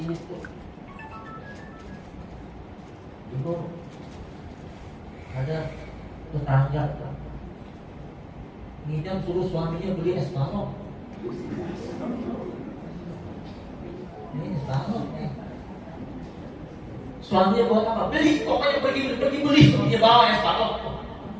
itu. Dulu ada tetangga ngidam suruh suaminya beli es balok. Ini es balok nih. Suaminya buat apa? Beli, pokoknya pergi beli. Dia bawa es balok.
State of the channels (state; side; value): identical; both; correlation 1.00